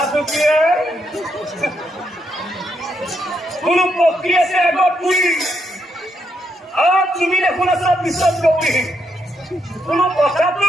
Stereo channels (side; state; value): both; normal; correlation 0.78